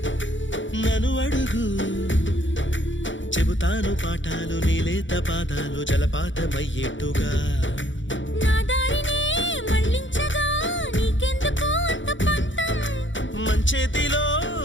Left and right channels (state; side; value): late; right; 0.55 ms